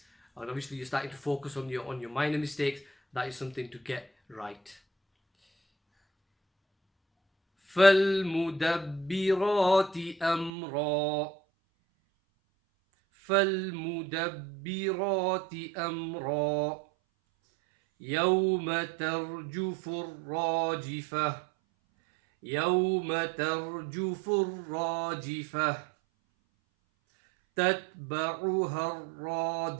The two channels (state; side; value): drops out; left; at 10.5 s